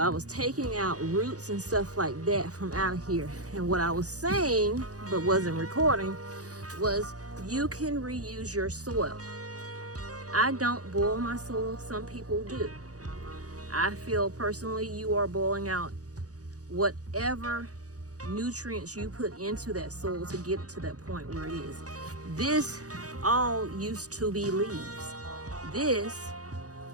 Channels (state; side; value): late; left; 0.67 ms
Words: was taking out roots and stuff like that from out of here. And what I was saying, but wasn't recording, was you can reuse your soil. I don't boil my soil, some people do. I feel personally you are boiling out whatever nutrients you put into that soil to get it to that point where it is. This all used to be leaves. This,